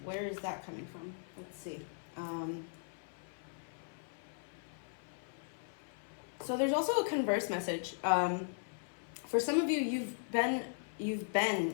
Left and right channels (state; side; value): silent; right; 52 dB below the other